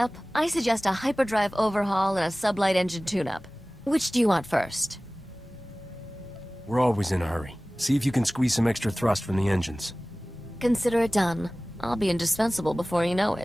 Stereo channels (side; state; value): both; normal; correlation 0.98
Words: I suggest a hyperdrive overhaul and a sublight engine tune-up. Which do you want first? We're always in a hurry. See if you can squeeze some extra thrust from the engines. Consider it done. I'll be indispensable before you know